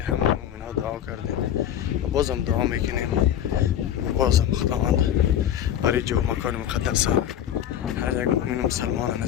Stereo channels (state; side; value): quieter; right; 10.4 dB